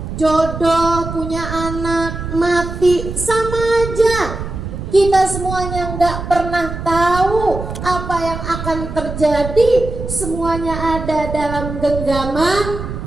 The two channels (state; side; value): noise; right; rumble, 7 dB below the sound